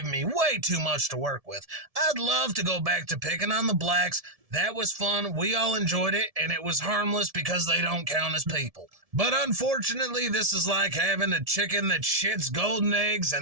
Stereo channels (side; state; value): left; late; 1.7 ms